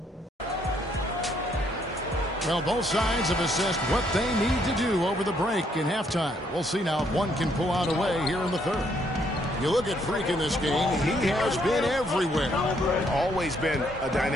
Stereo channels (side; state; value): both; normal; correlation 0.70